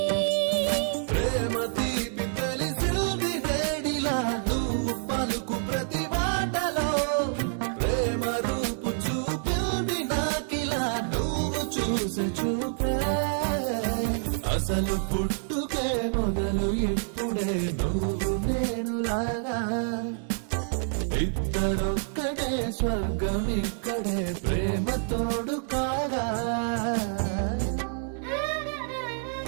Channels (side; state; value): left; silent; digital silence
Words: ప్రేమ తీపి తెలిసింది వేడిలా నువ్వు పలుకు ప్రతి మాటలో ప్రేమ రూపు చూపింది నాకిలా నువ్వు చూసే చూపే అసలు పుట్టుకే మొదలు ఇప్పుడే నువ్వు నేను లాగా ఇద్దరొక్కడే స్వర్గం ఇక్కడే ప్రేమ తోడు కాగా